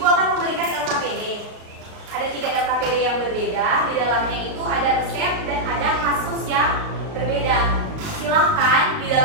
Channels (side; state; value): left; late; 37 ms